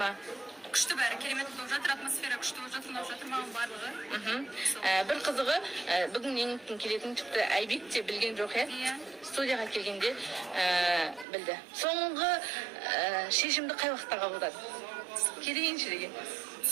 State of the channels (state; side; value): drops out; left; at 11.2 s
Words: Күшті бәрі, керемет болып жатыр, атмосфера күшті болып жатыр, ұнап жатыр маған барлығы. Бір қызығы, бүгін еңліктің келетін тіпті Айбек те білген жоқ, студияға келгенде білді. Соңғы шешімді қай уақытта қабылдады? Келейінші деген.